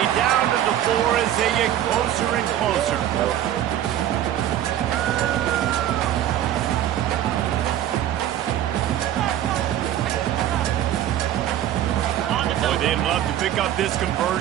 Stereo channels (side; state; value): left; quieter; 11.7 dB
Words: down to the floor as they get closer and closer. Boy, they'd love to pick up this